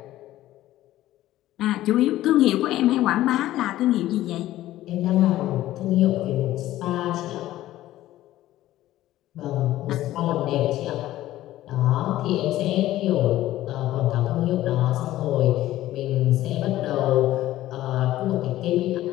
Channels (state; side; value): quieter; right; 14.7 dB